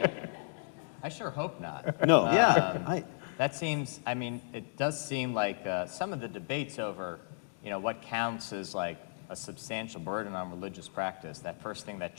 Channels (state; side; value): silent; right; digital silence